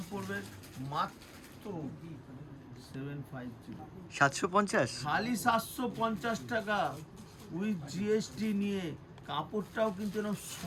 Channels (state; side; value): identical; both; correlation 1.00